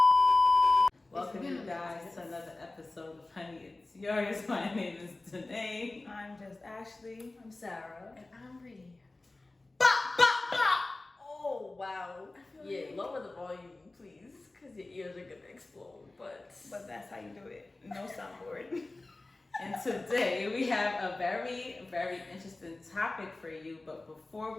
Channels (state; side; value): quieter; right; 3.0 dB